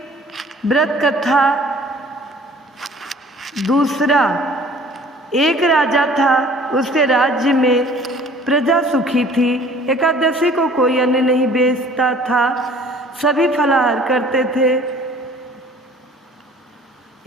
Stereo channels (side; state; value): both; normal; correlation 0.51